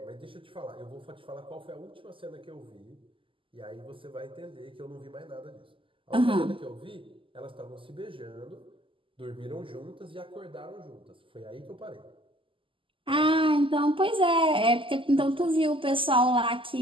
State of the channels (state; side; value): late; left; 0.25 ms